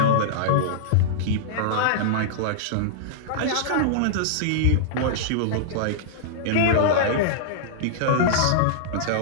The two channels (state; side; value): different; both; correlation -0.02